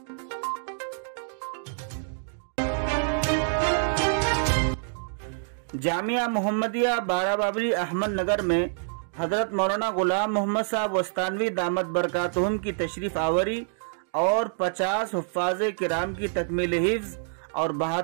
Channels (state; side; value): silent; left; digital silence